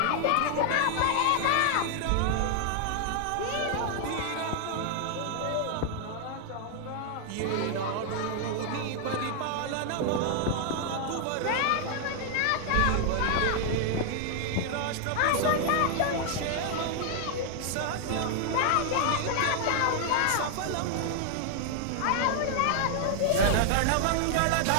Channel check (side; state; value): both; different; correlation 0.00